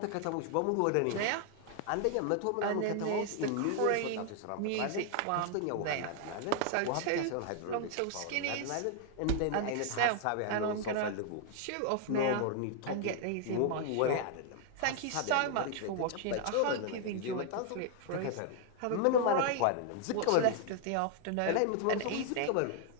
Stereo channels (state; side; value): different; both; correlation 0.00